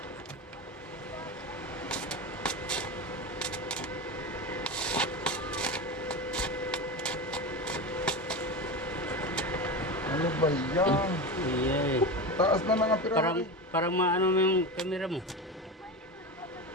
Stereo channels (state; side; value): normal; both; correlation 0.22